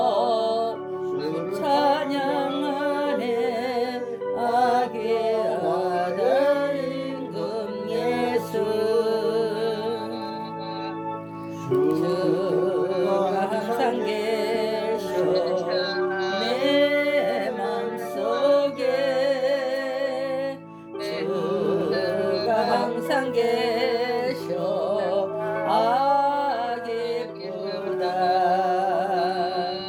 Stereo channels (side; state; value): both; identical; correlation 1.00